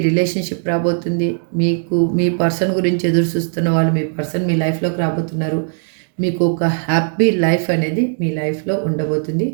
రిలేషన్షిప్ రాబోతుంది. మీకు మీ పర్సన్ గురించి ఎదురు చూస్తున్న వాళ్ళు మీ పర్సన్ మీ లైఫ్లోకి రాబోతున్నారు. మీకు ఒక హ్యాపీ లైఫ్ అనేది మీ లైఫ్లో ఉండబోతుంది.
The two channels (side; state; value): left; silent; digital silence